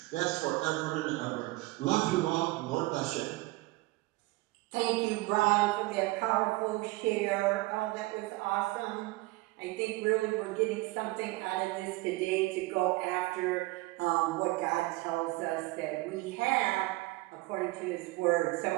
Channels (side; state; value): left; quieter; 21.2 dB